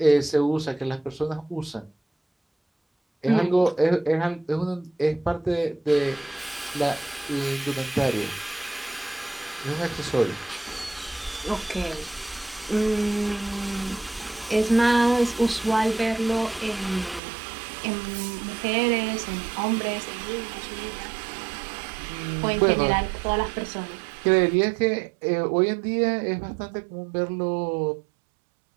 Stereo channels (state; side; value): drops out; left; at 17.2 s